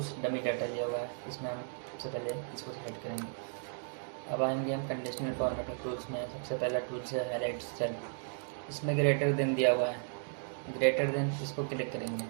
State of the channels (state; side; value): silent; left; digital silence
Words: डमी डाटा लिया हुआ है। इसमें हम सबसे पहले इसको सेलेक्ट करेंगे। अब आएंगे हम कंडीशनल फॉर्मेटिंग टूल्स में। सबसे पहला टूल्स है हाईलाइट सेल। इसमें ग्रेटर देन दिया हुआ है। ग्रेटर देन इसको क्लिक करेंगे।